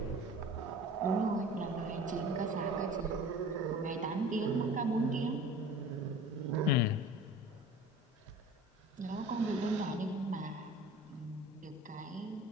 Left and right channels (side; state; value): both; normal; correlation 0.41